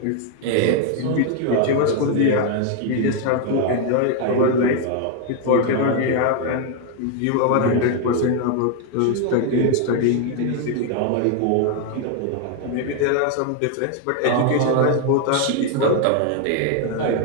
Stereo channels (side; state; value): both; different; correlation 0.01